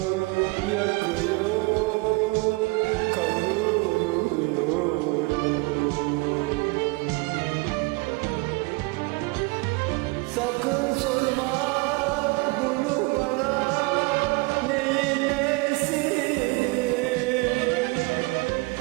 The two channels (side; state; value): left; quieter; 26.1 dB